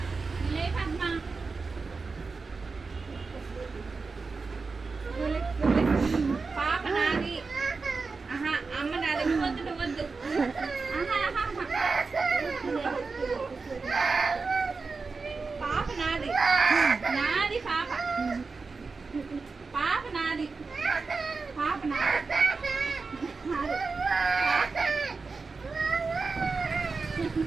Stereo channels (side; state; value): left; quieter; 4.3 dB